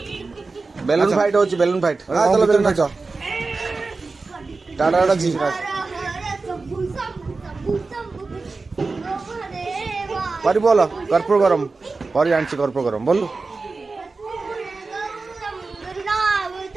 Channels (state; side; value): quieter; left; 3.9 dB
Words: ବେଲୁନ ଫାଇଟ୍ ହଉଛି ବେଲୁନ ଫାଇଟ୍ ଚାଲ ବେଲୁନ ନାଚ टाटा टाटा जी परी बोल कर्पूर गरम परी आनी कर्पूर गरम बोलू